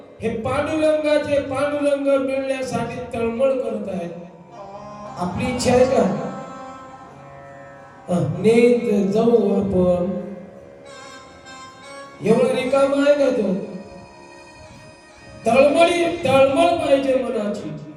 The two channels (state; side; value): identical; both; correlation 1.00